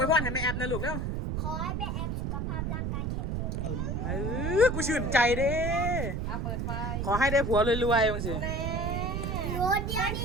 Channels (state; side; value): noise; right; rumble, 1 dB below the sound